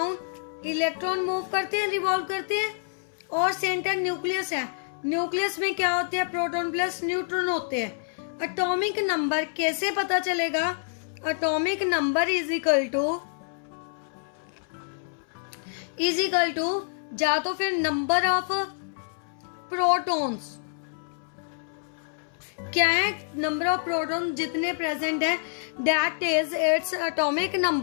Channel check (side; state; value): right; silent; 60 dB below the other